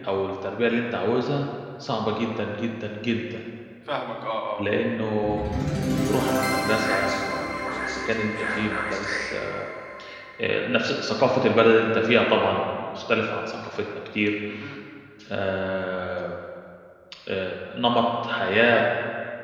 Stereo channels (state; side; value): identical; both; correlation 1.00